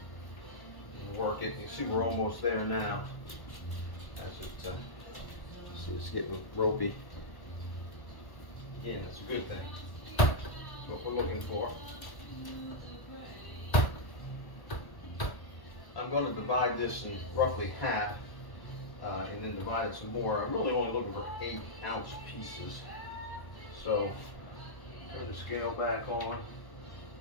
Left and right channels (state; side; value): late; right; 1.1 ms